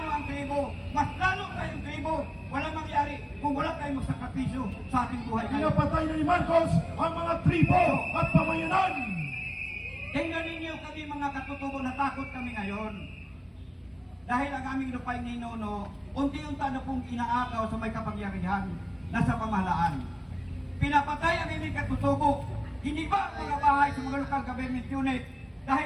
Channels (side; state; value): both; identical; correlation 1.00